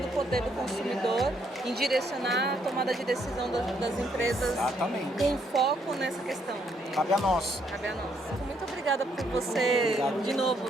do poder do consumidor em direcionar a tomada de decisão das empresas. Exatamente. Com foco nessa questão. Cabe a nós. Cabe a nós. Muito obrigada por você, Obrigado. de novo,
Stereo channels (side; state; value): both; normal; correlation 0.72